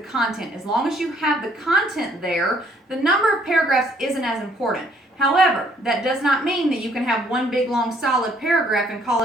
As long as you have the content there, the number of paragraphs isn't as important. However, that does not mean that you can have one big long solid paragraph and call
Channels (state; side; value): normal; both; correlation 0.64